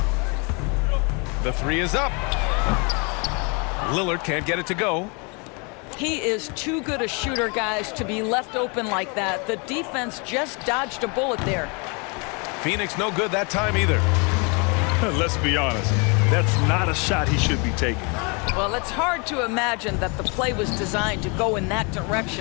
The 3 is up. Lillard can't get it to go. He is too good a shooter, guys, to be left open like that. The defense just dodged a bullet there. Phoenix no good that time either. Let's be honest, that's not a shot he should be taking. Well, it's hard to imagine that the play was designed to go in that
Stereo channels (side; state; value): right; quieter; 32.4 dB